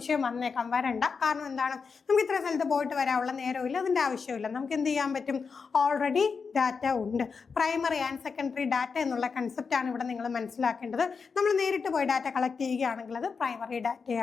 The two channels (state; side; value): quieter; right; 5.3 dB